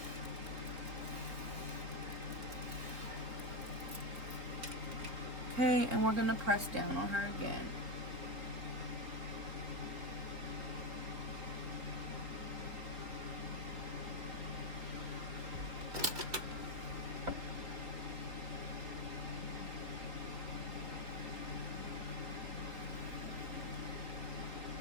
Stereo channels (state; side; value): late; left; 3.7 ms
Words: Okay, and we're gonna press down on her again.